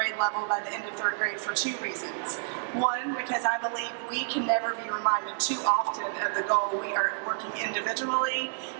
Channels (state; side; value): silent; left; digital silence